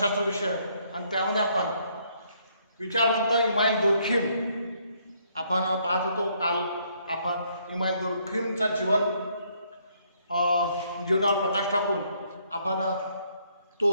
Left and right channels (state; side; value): inverted; both; correlation -0.69